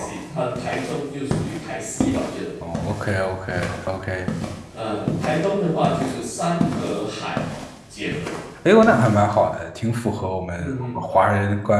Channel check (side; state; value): both; identical; correlation 1.00